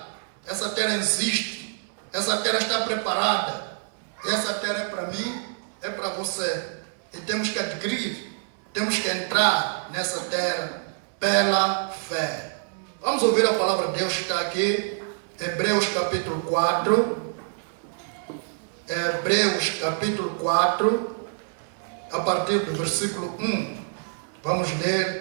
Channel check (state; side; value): silent; left; 61 dB below the other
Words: essa terra existe, essa terra está preparada. E essa terra é para mim, é para você. E temos que adquirir, temos que entrar nessa terra pela fé. Vamos ouvir a palavra de Deus que está aqui, Hebreus capítulo 4. Hebreus capítulo 4, a partir do versículo 1. Vamos